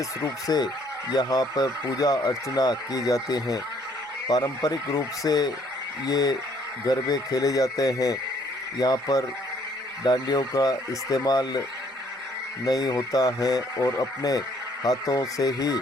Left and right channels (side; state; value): both; normal; correlation 0.64